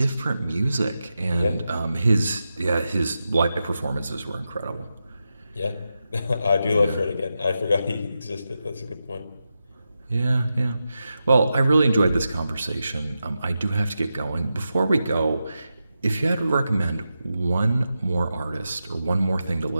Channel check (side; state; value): both; inverted; correlation -0.89